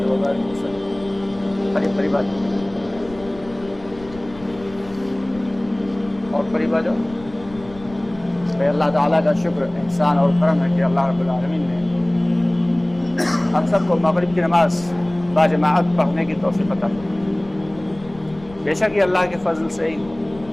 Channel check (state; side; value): noise; left; rumble, 20 dB below the sound